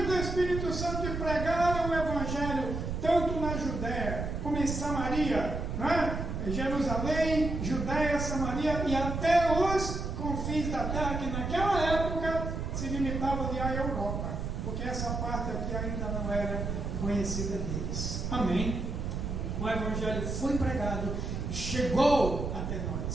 do Espírito Santo e pregaram o Evangelho, tanto na Judéia como em Samaria, Jerusalém, Judéia, Samaria e até os confins da terra, que naquela época se limitava ali à Europa, porque essa parte aqui ainda não era conhecida deles. Amém? O Evangelho foi pregado, chegou até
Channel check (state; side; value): noise; right; rumble, 3 dB below the sound